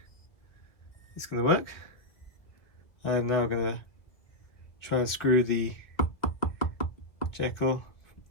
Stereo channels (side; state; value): right; late; 1.7 ms